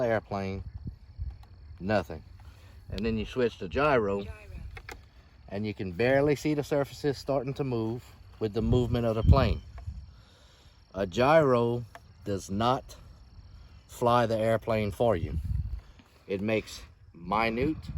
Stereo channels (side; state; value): both; identical; correlation 1.00